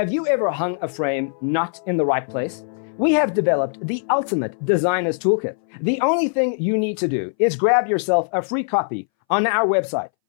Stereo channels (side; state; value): right; silent; 62 dB below the other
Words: you ever hung a frame not in the right place? We have developed the ultimate designer's toolkit. The only thing you need to do is grab yourself a free copy on our website,